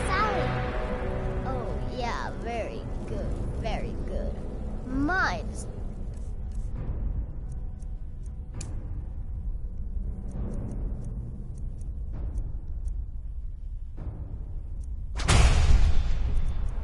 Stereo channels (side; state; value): both; identical; correlation 1.00